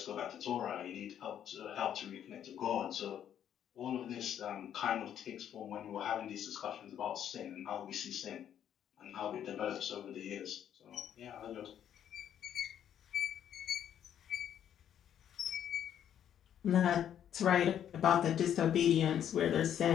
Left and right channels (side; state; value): right; quieter; 9.8 dB